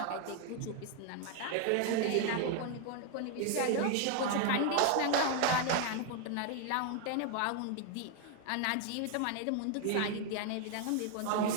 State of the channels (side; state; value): both; different; correlation 0.01